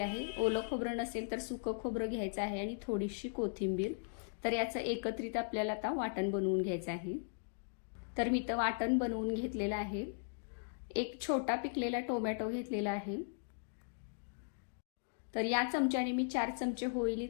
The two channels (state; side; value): silent; right; digital silence